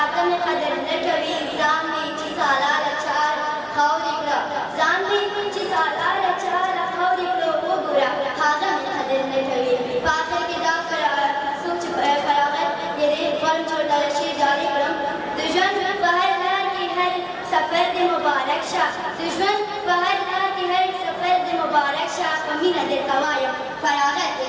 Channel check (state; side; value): identical; both; correlation 1.00